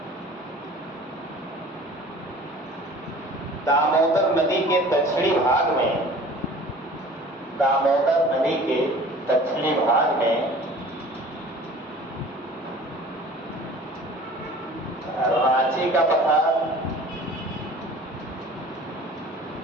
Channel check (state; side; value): normal; both; correlation 0.45